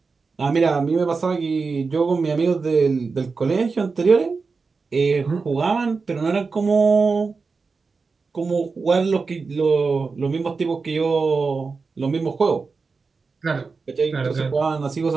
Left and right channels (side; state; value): left; quieter; 4.5 dB